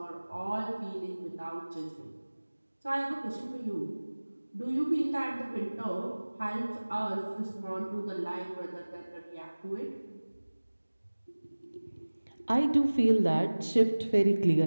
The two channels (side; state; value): both; inverted; correlation -1.00